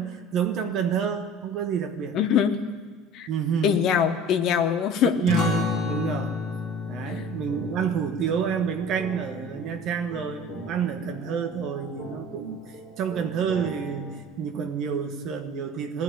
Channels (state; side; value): normal; both; correlation 0.42